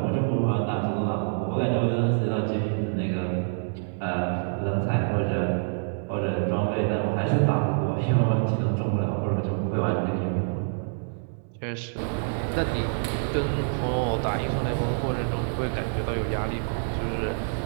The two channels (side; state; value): left; silent; digital silence